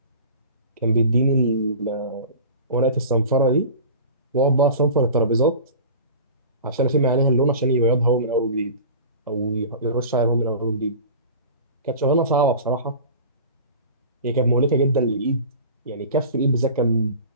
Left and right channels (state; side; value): inverted; both; correlation -0.37